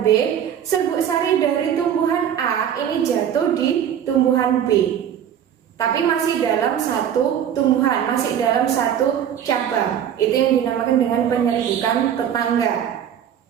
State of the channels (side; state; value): left; quieter; 9.3 dB